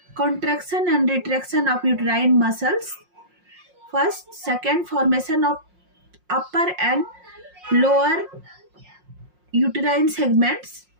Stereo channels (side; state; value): left; late; 5.6 ms